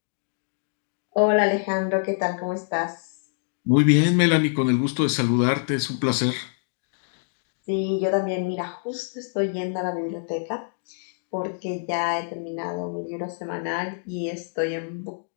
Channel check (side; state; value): right; silent; digital silence